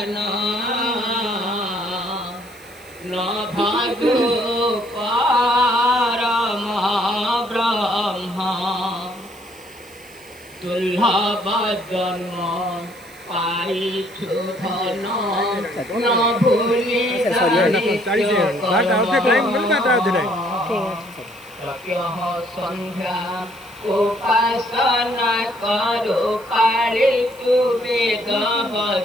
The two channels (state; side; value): noise; right; hiss, 25 dB below the sound